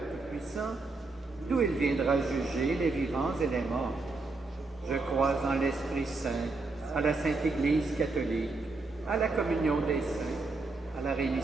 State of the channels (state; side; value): quieter; left; 3.5 dB